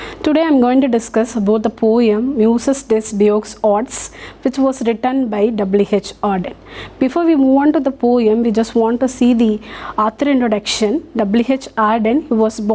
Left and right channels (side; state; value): both; identical; correlation 1.00